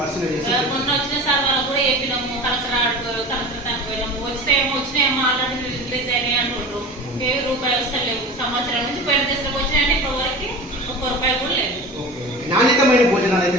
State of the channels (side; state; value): both; normal; correlation 0.34